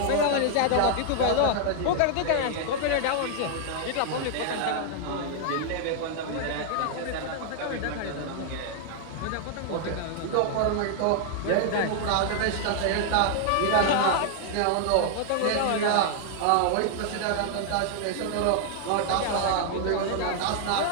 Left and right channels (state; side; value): different; both; correlation 0.00